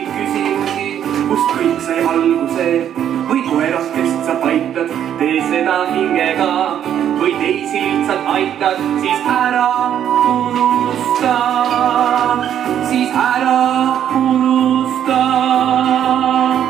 küsimusi, kust kõik sai alguse. Või koerakest sa paitad, tee seda hingega. Või teisi lihtsalt aitad, siis ära unusta. Siis ära unusta.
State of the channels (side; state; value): left; quieter; 9.9 dB